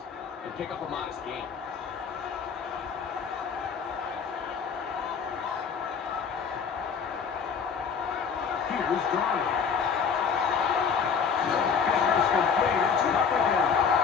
and pick up a modest gain. Here's Darnold. Business complete. It's up again.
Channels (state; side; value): quieter; right; 6.3 dB